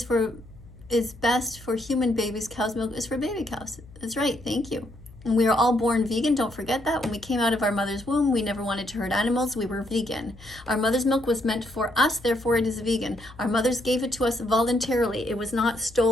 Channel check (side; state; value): left; noise; hum, 21 dB below the sound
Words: best for human babies. Cow's milk is for baby cows. That's right, thank you. And we are all born vegan, don't forget that. When we came out of our mother's womb, we never wanted to hurt animals, we were vegan. Our mother's milk was meant for us, therefore it is vegan. Our mothers gave it to us voluntarily, it was not